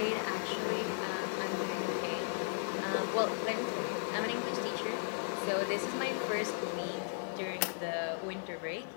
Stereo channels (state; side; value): silent; right; digital silence